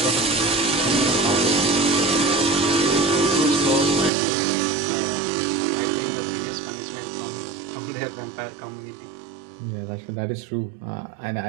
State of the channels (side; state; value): left; drops out; at 4.1 s